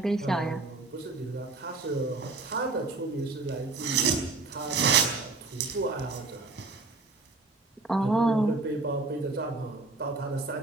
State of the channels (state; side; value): quieter; left; 3.5 dB